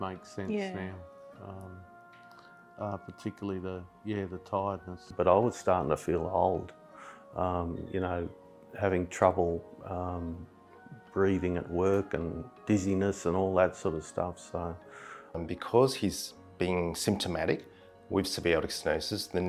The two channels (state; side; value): identical; both; correlation 1.00